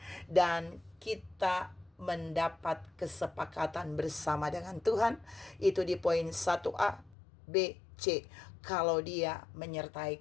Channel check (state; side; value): drops out; right; at 7.2 s